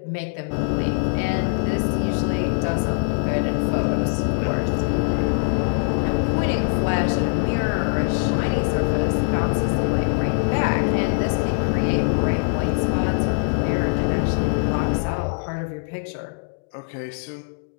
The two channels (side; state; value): right; silent; digital silence